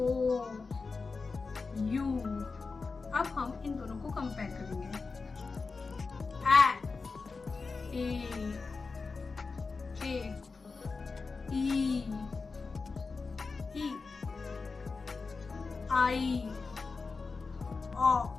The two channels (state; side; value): quieter; right; 4.4 dB